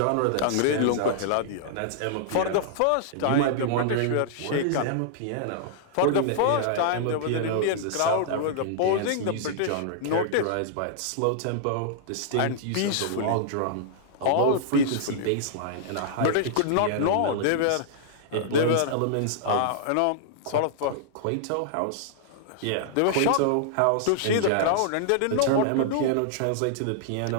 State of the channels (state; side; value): different; both; correlation -0.01